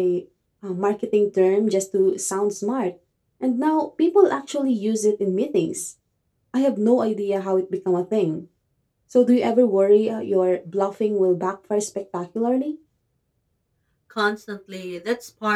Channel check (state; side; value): identical; both; correlation 1.00